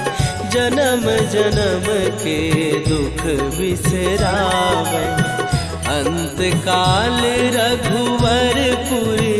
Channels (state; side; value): identical; both; correlation 1.00